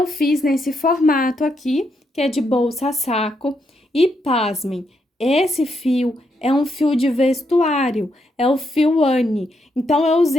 fiz nesse formato aqui, que é de bolsa saco. E pasmem, esse fio é um fio de vestuário, é o fio Anne. Então, eu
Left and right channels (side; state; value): both; normal; correlation 0.79